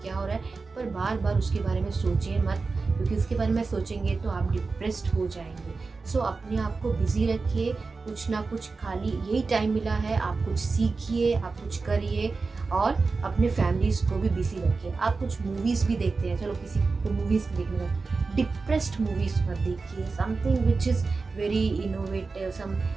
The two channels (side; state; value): left; quieter; 4.2 dB